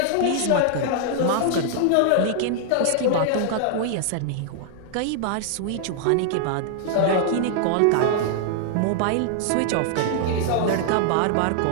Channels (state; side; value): different; both; correlation -0.01